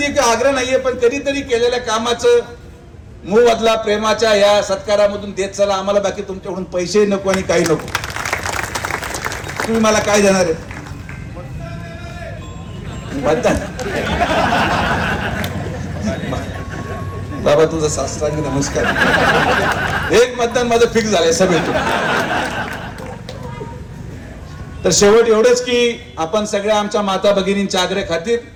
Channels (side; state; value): both; identical; correlation 1.00